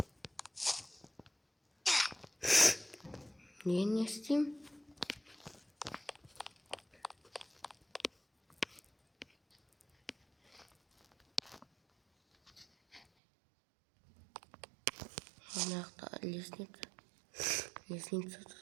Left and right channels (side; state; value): left; drops out; at 13.1 s